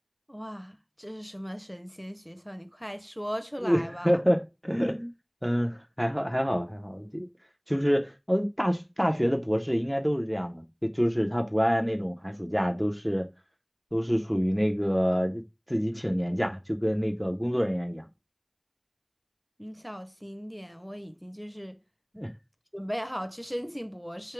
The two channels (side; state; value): both; identical; correlation 1.00